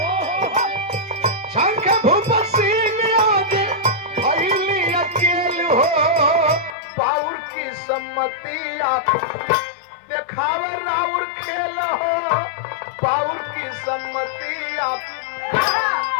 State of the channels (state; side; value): drops out; right; at 6.8 s